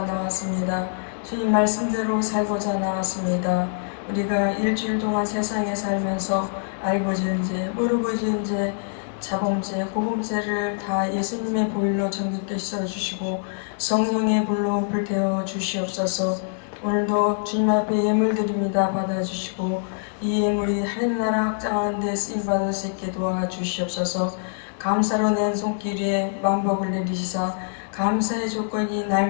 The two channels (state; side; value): silent; right; digital silence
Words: 나왔습니다. 주님 말씀대로 살고자 나왔습니다. 우리가 일주일 동안 세상에 살면서 알고 지은 죄, 모르고 지은 죄, 자범죄, 고범죄를 다 예수님의 보혈로 정결케 씻어주시고 성령의 불로 불태워 주시옵소서. 오늘도 주님 앞에 예물 드립니다. 받아주시고 이 예물이 하늘나라 확장하는 데 쓰임받을 수 있게 도와주시옵소서. 감사로 낸 손길 위에 만복을 내리시사 감사의 조건이